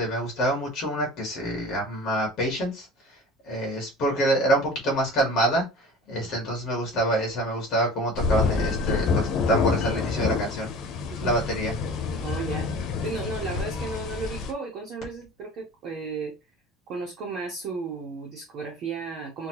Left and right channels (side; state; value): both; normal; correlation 0.40